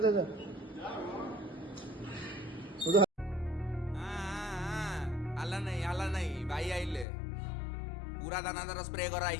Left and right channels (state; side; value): drops out; right; at 7.1 s